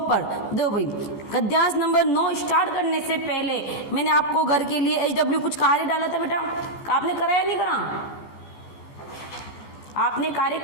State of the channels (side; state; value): right; late; 15 ms